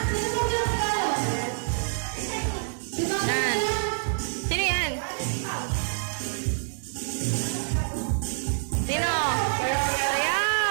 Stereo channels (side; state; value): left; silent; 56 dB below the other